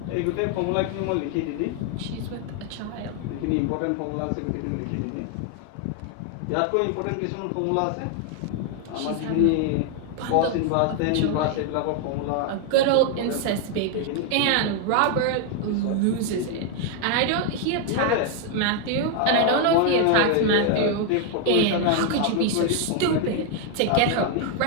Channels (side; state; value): both; different; correlation 0.00